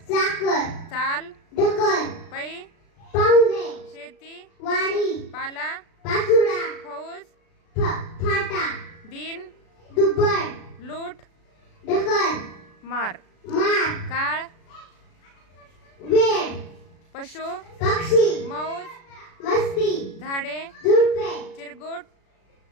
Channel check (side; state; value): right; late; 36 ms